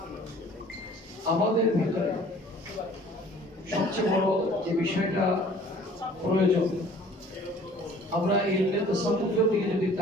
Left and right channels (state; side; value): normal; both; correlation 0.52